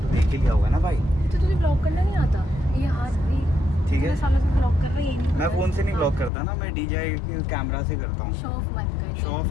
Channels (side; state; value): right; drops out; at 6.3 s